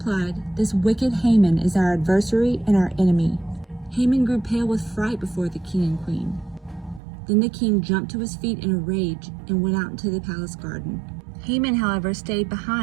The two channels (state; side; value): drops out; left; at 7.0 s